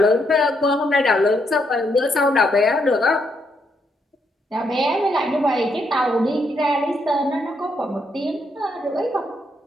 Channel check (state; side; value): normal; both; correlation 0.76